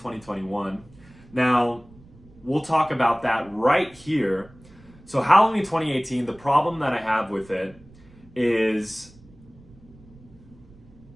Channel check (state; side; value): noise; right; rumble, 24 dB below the sound